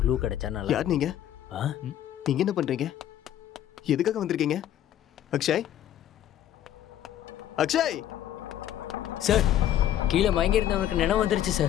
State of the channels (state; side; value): quieter; right; 11.4 dB